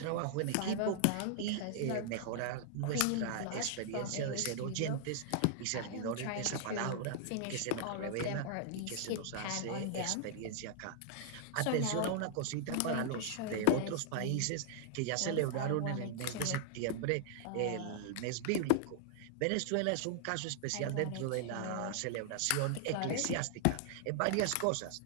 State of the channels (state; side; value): different; both; correlation -0.01